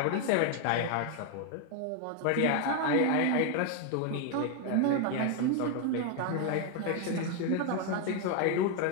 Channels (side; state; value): both; different; correlation 0.01